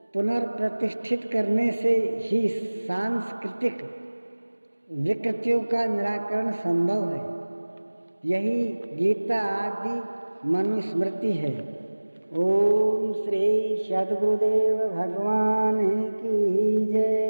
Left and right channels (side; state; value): both; inverted; correlation -1.00